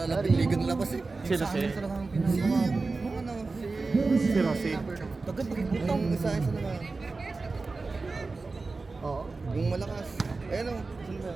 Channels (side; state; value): left; quieter; 3.8 dB